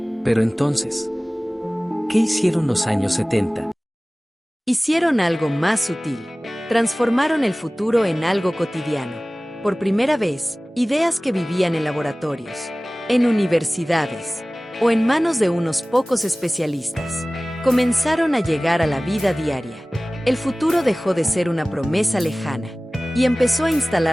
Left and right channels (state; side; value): normal; both; correlation 0.98